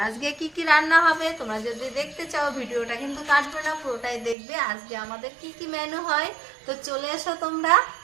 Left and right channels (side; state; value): left; drops out; at 4.4 s